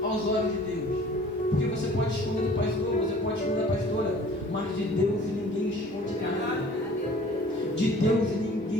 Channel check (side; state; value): both; normal; correlation 0.49